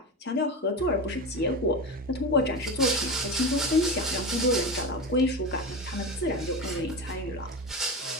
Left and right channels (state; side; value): normal; both; correlation 0.23